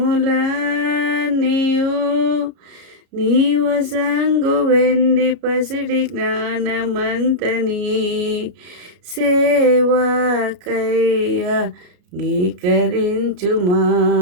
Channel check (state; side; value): late; left; 33 ms